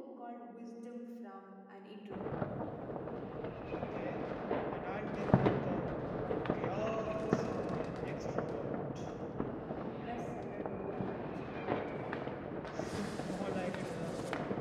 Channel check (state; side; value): identical; both; correlation 1.00